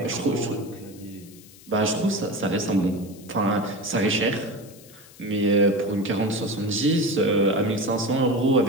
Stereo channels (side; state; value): left; noise; hiss, 22 dB below the sound